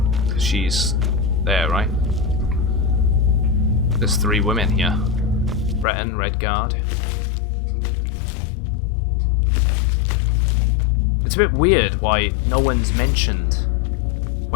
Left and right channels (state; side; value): drops out; right; at 5.9 s